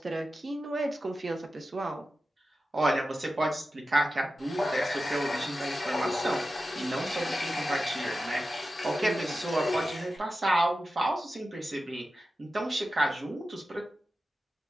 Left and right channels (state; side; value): normal; both; correlation 0.93